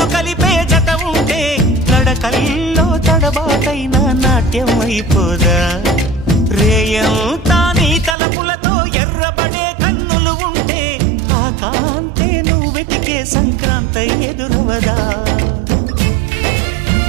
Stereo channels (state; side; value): drops out; left; at 8.2 s